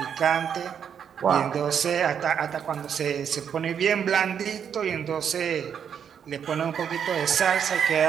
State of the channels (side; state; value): left; quieter; 7.9 dB